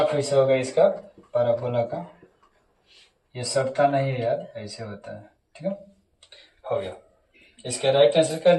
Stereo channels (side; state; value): both; identical; correlation 1.00